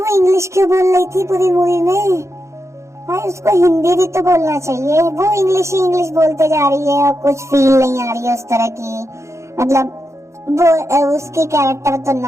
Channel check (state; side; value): late; left; 0.14 ms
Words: इंग्लिश क्यों बोल रही थी पूरी मूवी में? भाई उसको हिंदी भी तो बोलना चाहिए। वो इंग्लिश ही इंग्लिश बोलते जा रही है और कुछ फील नहीं आ रही है उस तरह की। मतलब वो उसकी कैरेक्टर तो